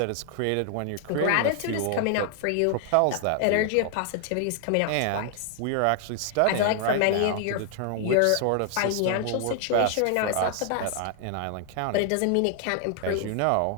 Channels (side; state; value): both; different; correlation 0.00